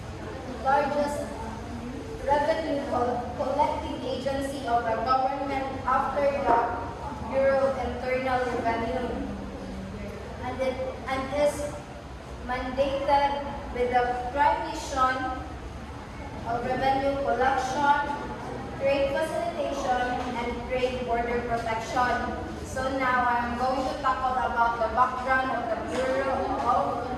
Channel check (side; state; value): both; identical; correlation 1.00